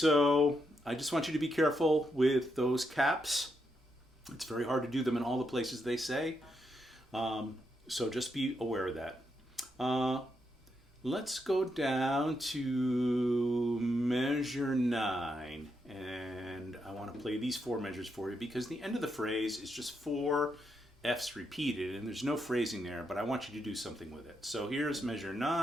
I just want you to be careful with those caps. It's very hard to do them in all the places they say. So just be aware of that. Let's go down to measure 9, and I want to play these 4 measures for you because the end of the phrase is just 4 F's repeated, and there's no phrasing there, but I want you to do something with it. So here's measure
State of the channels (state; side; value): normal; both; correlation 0.81